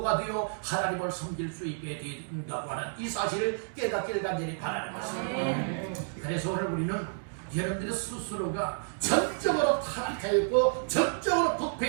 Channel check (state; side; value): silent; left; digital silence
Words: 되어 하나님을 섬길 수 있게 된다고 하는 이 사실을 깨닫기를 간절히 바라는 것입니다. 그래서 오늘 우리는 여러분들의 스스로가 전적으로 타락하였고 전적으로